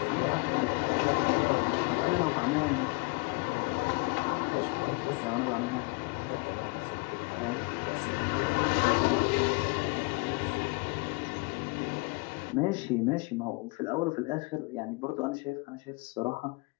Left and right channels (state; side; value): quieter; right; 29.1 dB